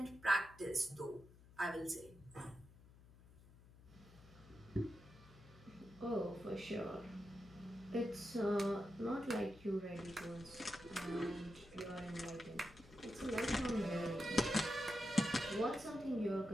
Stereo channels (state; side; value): noise; left; hum, 21 dB below the sound